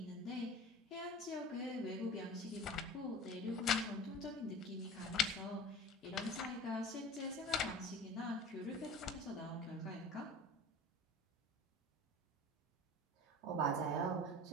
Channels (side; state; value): both; normal; correlation 0.38